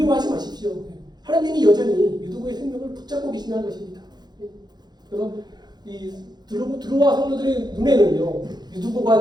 마십시오. 하나님이 여전히 유두고의 생명을 붙잡고 계신다는 것입니다. 그래서 이 드로와 성도들의 눈에는요, 유두고가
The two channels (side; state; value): left; late; 0.20 ms